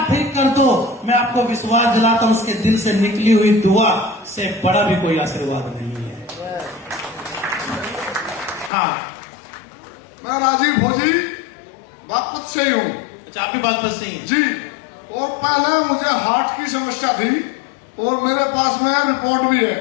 ठीक कर दो, मैं आपको विश्वास दिलाता हूं उसके दिल से निकली हुई दुआ से बड़ा भी कोई आशीर्वाद नहीं है। हाँ, मैं राजीव फौजी, से ही हूँ अच्छा, आप भी बागपत से ही हैं। जी। और पहले मुझे हार्ट की समस्या थी और मेरे पास में रिपोर्ट भी है,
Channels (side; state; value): right; drops out; at 8.7 s